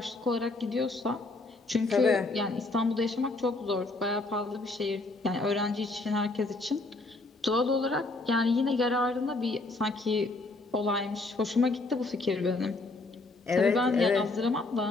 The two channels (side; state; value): right; quieter; 3.1 dB